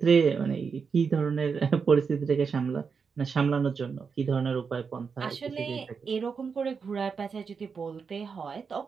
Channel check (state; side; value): quieter; left; 5.6 dB